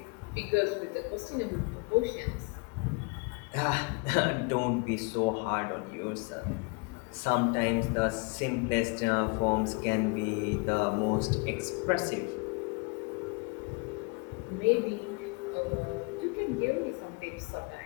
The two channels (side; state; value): right; quieter; 31.7 dB